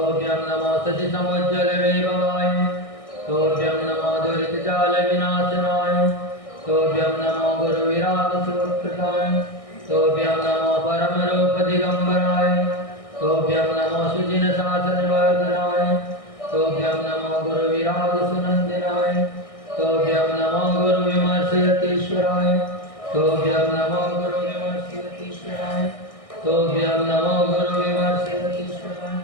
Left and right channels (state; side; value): late; right; 1.6 ms